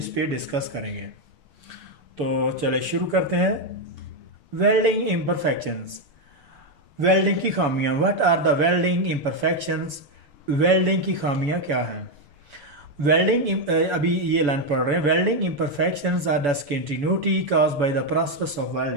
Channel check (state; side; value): late; left; 7.0 ms